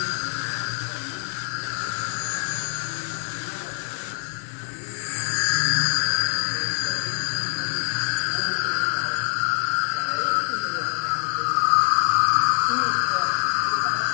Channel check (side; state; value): right; silent; 62 dB below the other